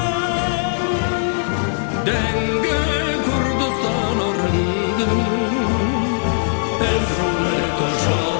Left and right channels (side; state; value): right; silent; digital silence